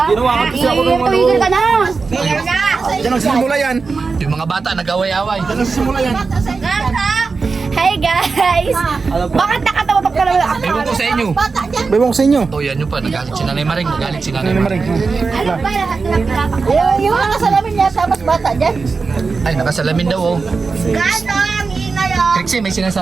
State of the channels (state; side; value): quieter; left; 4.5 dB